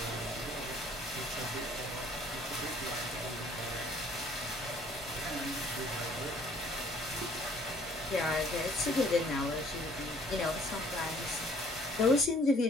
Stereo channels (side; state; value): both; normal; correlation 0.58